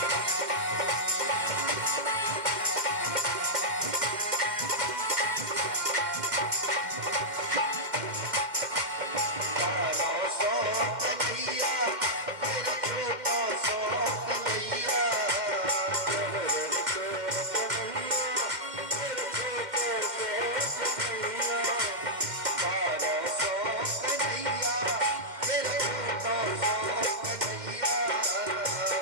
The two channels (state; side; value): late; left; 2.2 ms